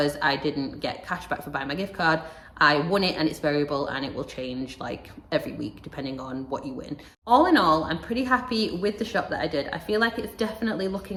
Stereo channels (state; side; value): identical; both; correlation 1.00